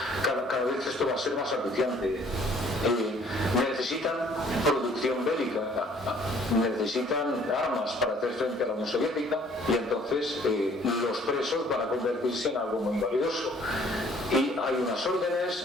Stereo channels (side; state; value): both; normal; correlation 0.58